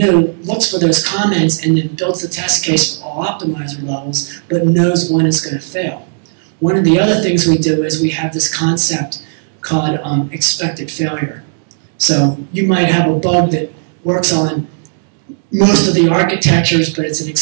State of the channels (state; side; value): silent; left; digital silence